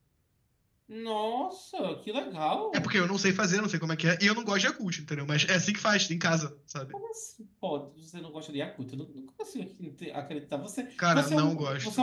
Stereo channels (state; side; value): identical; both; correlation 1.00